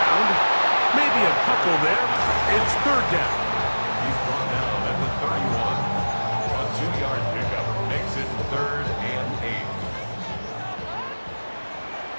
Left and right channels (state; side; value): inverted; both; correlation -1.00